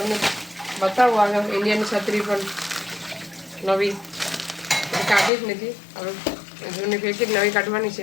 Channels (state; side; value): drops out; right; at 5.3 s